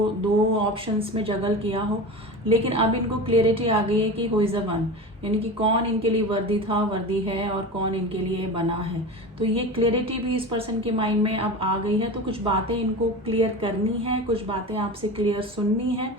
ऑप्शंस में जगल किया हो, लेकिन अब इनको क्लियरिटी आ गई है कि हु इज द वन, यानी कि कौन इनके लिए वर्दी था, वर्दी है, और कौन इनके लिए बना है। तो ये क्लियरिटी भी इस पर्सन के माइंड में अब आ गई है। तो कुछ बातें इनको क्लियर करनी है, कुछ बातें आपसे क्लियर सुननी है,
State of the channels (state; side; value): normal; both; correlation 0.29